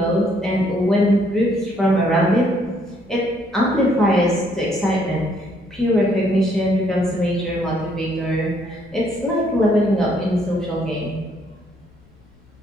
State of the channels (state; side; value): noise; left; rumble, 28 dB below the sound